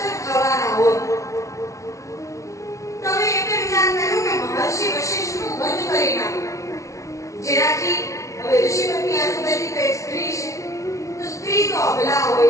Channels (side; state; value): right; late; 0.15 ms